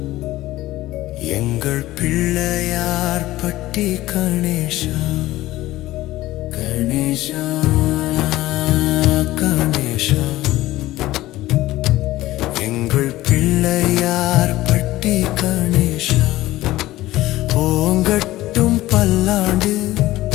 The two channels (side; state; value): right; quieter; 16.5 dB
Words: எங்கள் பிள்ளையார் பட்டி கணேஷா கணேஷா கணேஷா எங்கள் பிள்ளையார் பட்டி கணேஷா ஓங்கட்டும் பல்லாண்டு